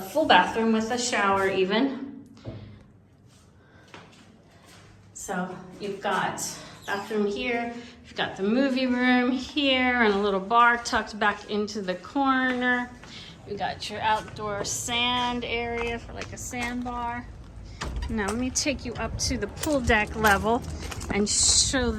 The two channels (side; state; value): both; identical; correlation 1.00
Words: bathroom with a shower even. So you've got bathroom here, you've got the movie room here, and a little bar tucked back into the corner. You got your outdoor sand area for like a sandbar. Now let me take you up to the pool deck level and show